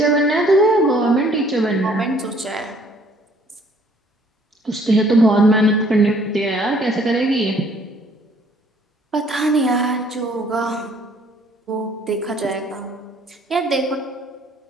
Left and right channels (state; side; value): normal; both; correlation 0.60